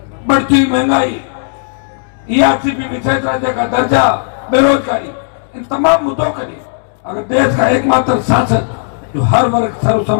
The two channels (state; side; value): silent; right; digital silence